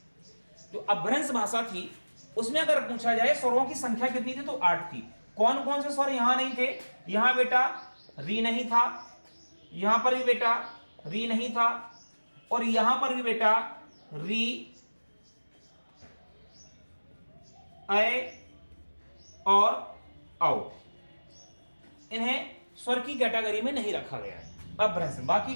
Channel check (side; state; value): both; inverted; correlation -1.00